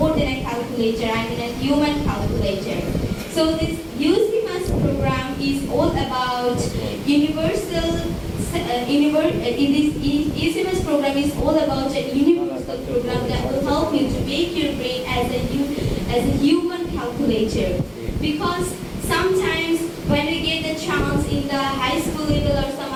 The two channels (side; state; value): both; identical; correlation 1.00